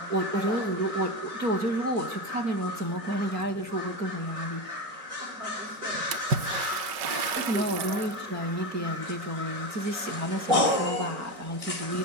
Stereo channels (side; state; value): left; late; 5.1 ms